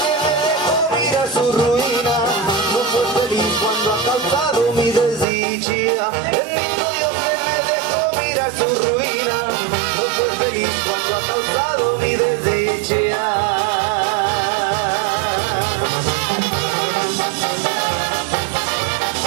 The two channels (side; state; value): left; drops out; at 5.2 s